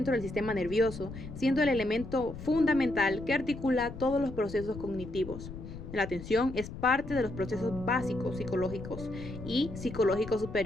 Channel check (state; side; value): noise; left; rumble, 11 dB below the sound